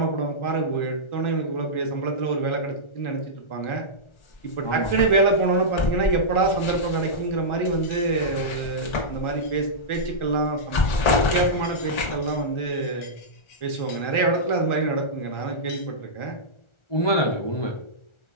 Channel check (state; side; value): late; right; 1.4 ms